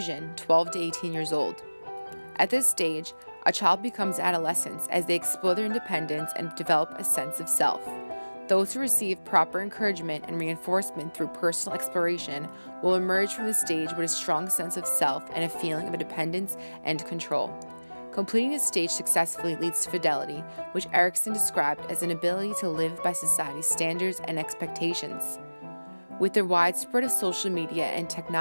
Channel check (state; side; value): inverted; both; correlation -1.00